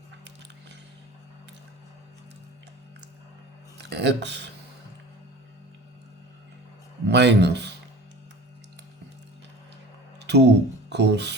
x minus 2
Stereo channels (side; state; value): both; normal; correlation 0.39